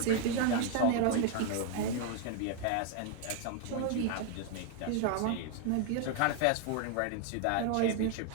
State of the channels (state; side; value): different; both; correlation 0.00